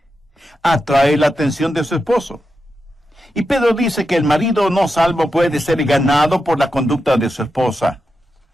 Atrae la atención de su esposo. Y Pedro dice que el marido no salvo puede ser ganado por la conducta de su esposa.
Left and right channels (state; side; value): normal; both; correlation 0.88